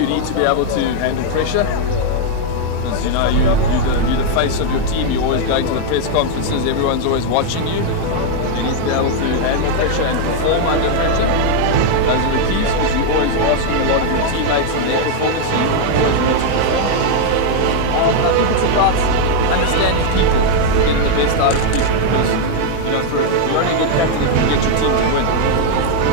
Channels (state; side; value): different; both; correlation 0.00